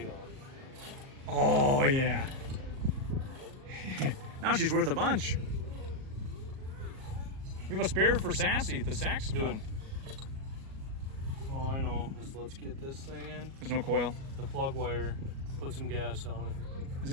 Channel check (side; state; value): left; late; 37 ms